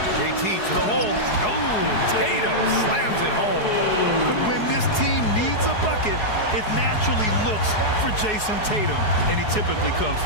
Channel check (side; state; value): right; late; 4.7 ms